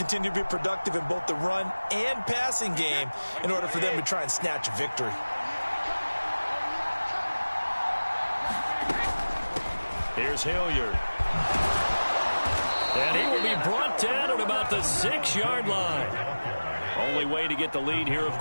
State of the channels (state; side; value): inverted; both; correlation -1.00